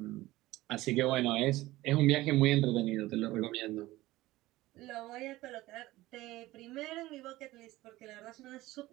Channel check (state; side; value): quieter; left; 17.7 dB